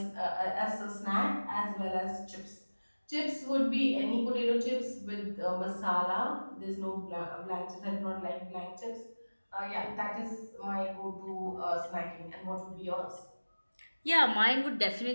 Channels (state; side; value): inverted; both; correlation -1.00